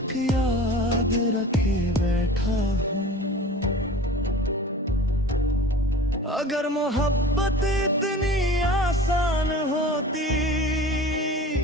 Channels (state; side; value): normal; both; correlation 0.40